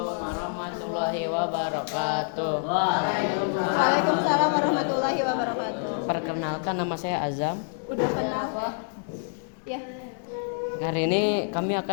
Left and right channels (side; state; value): right; silent; digital silence